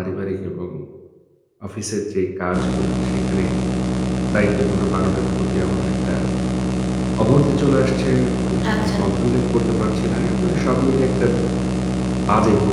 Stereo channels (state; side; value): identical; both; correlation 1.00